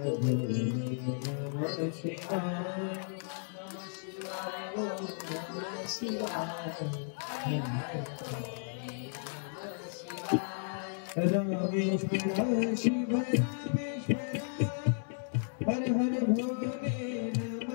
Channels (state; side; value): silent; right; 55 dB below the other